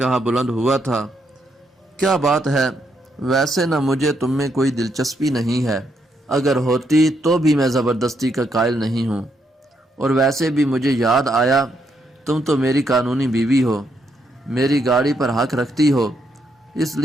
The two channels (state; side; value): normal; both; correlation 0.77